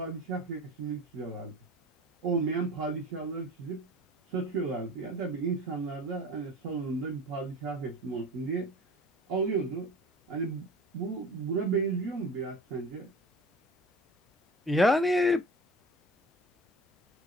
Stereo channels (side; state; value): both; normal; correlation 0.39